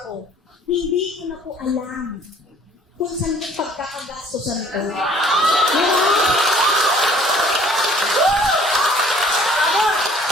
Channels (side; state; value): both; normal; correlation 0.55